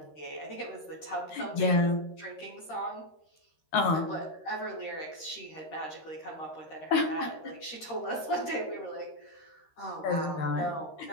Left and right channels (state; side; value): late; right; 13 ms